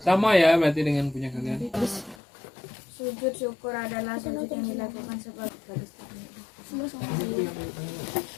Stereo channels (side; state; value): right; drops out; at 2.1 s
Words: ya berarti dengan punya kalian. Sujud syukur adalah sujud yang dilakukan sebagai